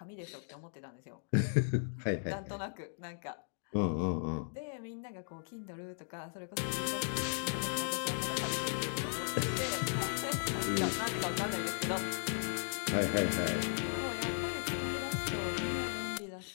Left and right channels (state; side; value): silent; right; digital silence